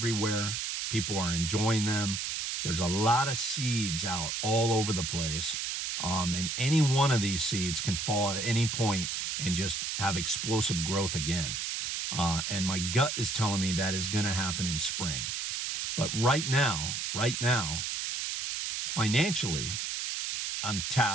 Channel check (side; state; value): right; noise; hiss, 2 dB below the sound